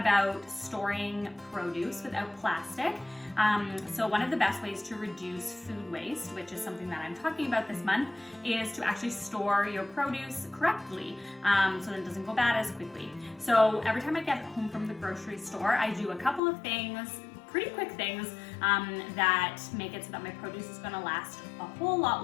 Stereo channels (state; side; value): drops out; right; at 16.4 s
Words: storing produce without plastic. So one of the best ways to reduce food waste, which is something that I'm talking about this month, is to actually store your produce correctly so that it doesn't go bad as quickly. So every time I get home from the grocery store, I do a couple of things, pretty quick things that make it so that my produce is going to last a whole lot